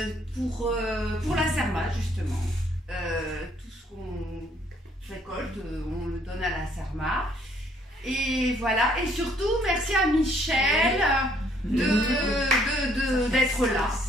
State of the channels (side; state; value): both; normal; correlation 0.65